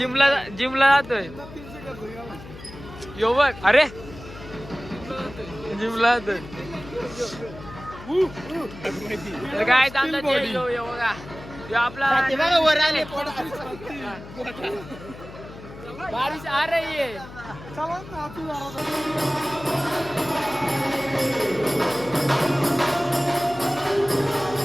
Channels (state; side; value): noise; left; hum, 16 dB below the sound